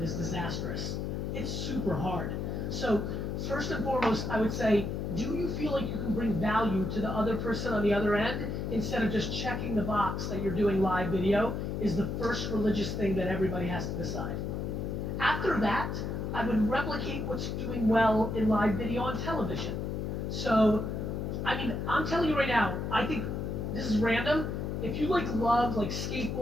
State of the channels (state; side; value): noise; left; hum, 3 dB below the sound